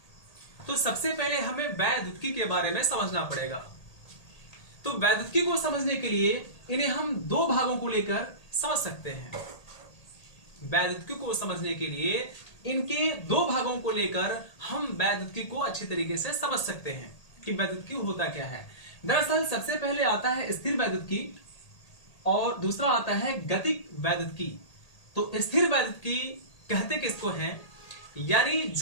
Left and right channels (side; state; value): right; late; 1.8 ms